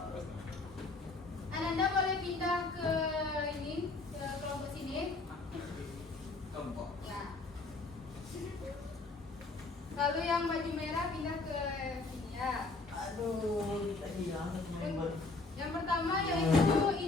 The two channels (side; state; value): right; quieter; 3.5 dB